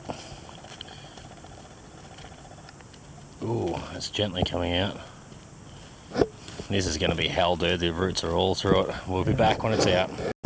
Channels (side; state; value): both; identical; correlation 1.00